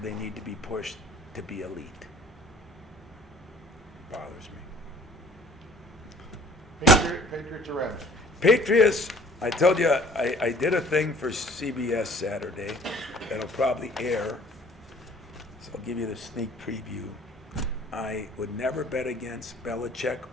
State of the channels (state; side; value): normal; both; correlation 0.53